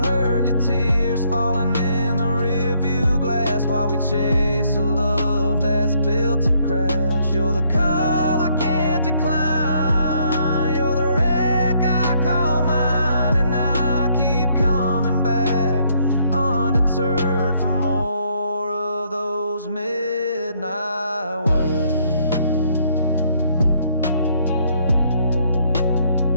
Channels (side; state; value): both; inverted; correlation -0.69